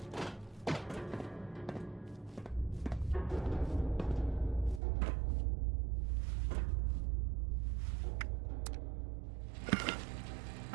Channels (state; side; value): drops out; left; at 4.8 s